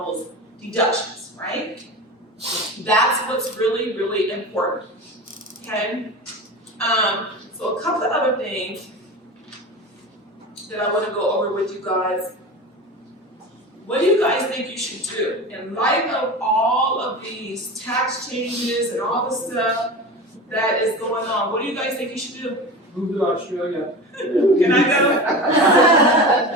deductions, right? That's what's really, really important, okay? So a couple of other things that I wanna go over with you guys. What do you guys think you should do? In light of all of these tax changes and all the stuff that is going on, what do you guys think you should do? Move to Australia. Can I go?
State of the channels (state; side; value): normal; both; correlation 0.29